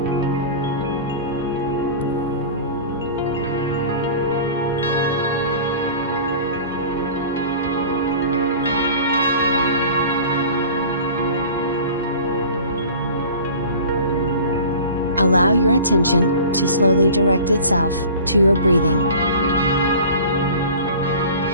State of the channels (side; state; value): both; inverted; correlation -0.40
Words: Allow your attention to slowly direct itself to your breathing.